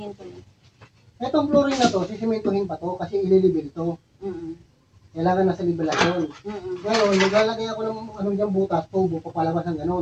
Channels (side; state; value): both; identical; correlation 1.00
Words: ko yun? itong flooring na to, sisimentohin pa to kasi ililibil to. Mm-mm. Kailangan nasa libelasyon. Mm-mm. Ngayon, naglalagay ako ng ano dyan butas, tubo, papalabas ng